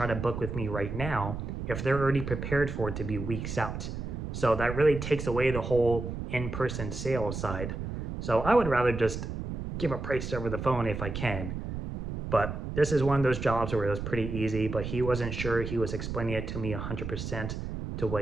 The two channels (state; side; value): noise; right; rumble, 5 dB below the sound